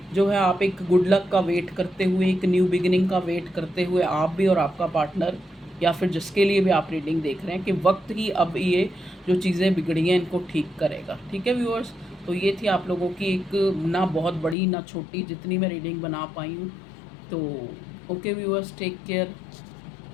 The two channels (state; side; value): drops out; right; at 14.6 s